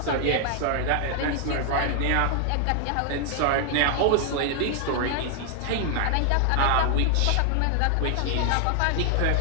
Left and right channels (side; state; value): both; different; correlation 0.00